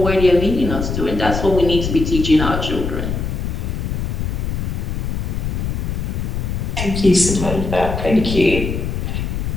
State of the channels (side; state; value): left; noise; rumble, 2 dB below the sound